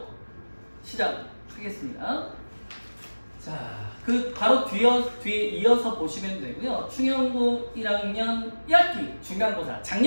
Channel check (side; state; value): both; inverted; correlation -1.00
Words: 시작하겠습니다. 자, 바로 뒤에 이어서 보시면 되고요. 충영고 1학년 1학기 중간고사